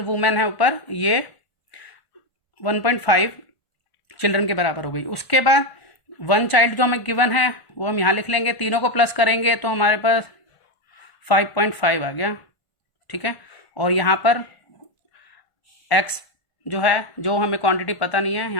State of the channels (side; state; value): right; late; 1.5 ms